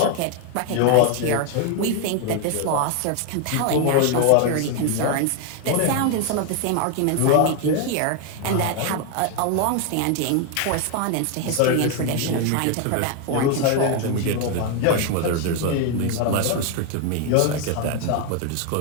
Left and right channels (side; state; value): both; different; correlation 0.01